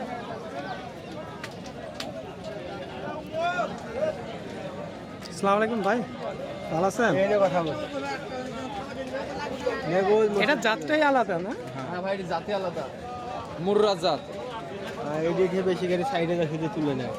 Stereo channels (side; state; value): both; identical; correlation 1.00